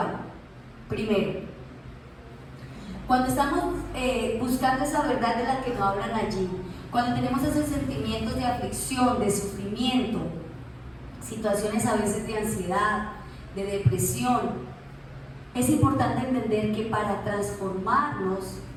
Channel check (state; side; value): identical; both; correlation 1.00